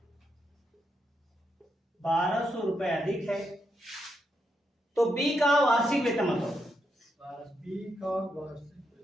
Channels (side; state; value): both; normal; correlation 0.81